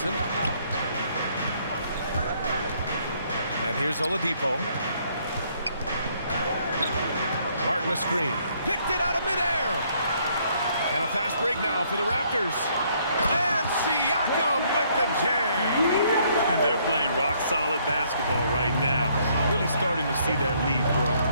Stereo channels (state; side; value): inverted; both; correlation -0.67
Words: And here's Oladipo. Martin a screen. Picked it out of midair. And a fast break now for the Raptors. And Siakam with the jam. And they're playing rock-solid basketball right now. Really starting to see that lead grow.